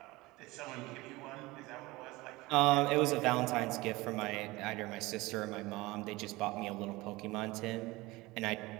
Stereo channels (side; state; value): left; quieter; 21.1 dB